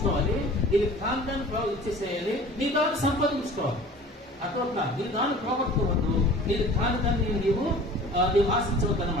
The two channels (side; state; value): both; normal; correlation 0.44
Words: నీకు కాంతాన్ని ఇచ్చేసేయాలి, నీ దాన్ని సంపాదించుకోవాలి. అట్లా నీ దాన్ని పోగొట్టుకోవద్దు, నీకు కాని దాన్ని నీవు ఆశించవద్దు